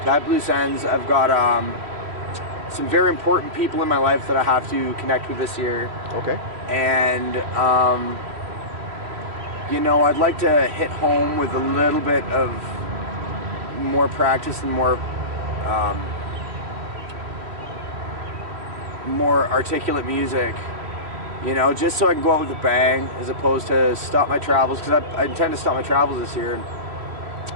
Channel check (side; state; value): left; late; 3.1 ms